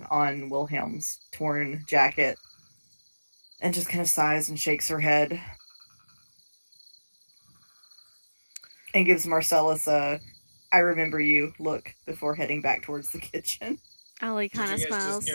on Wilhelm's torn jacket and just kind of sighs and shakes her head and gives Marcellus a "I remember you" look before heading back towards the kitchen. Alli kind of Did you guys smiles.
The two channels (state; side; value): inverted; both; correlation -1.00